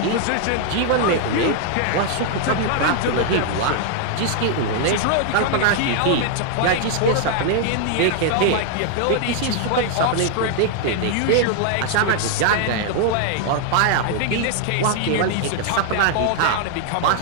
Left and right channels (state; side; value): different; both; correlation 0.00